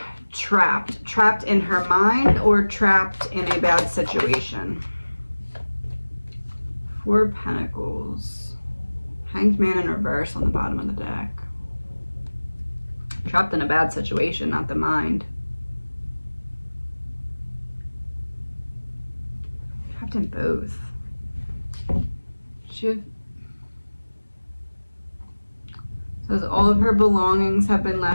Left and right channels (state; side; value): inverted; both; correlation -1.00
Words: Trapped in her mind or trapped in a bad situation. Four of Pentacles. Hanged Man in reverse on the bottom of the deck. Trapped in a bad situation, not the mind. Trapped in both. Says all of her belongings have been